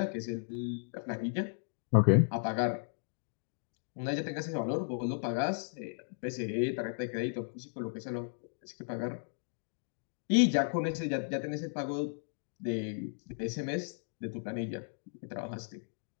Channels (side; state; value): right; silent; digital silence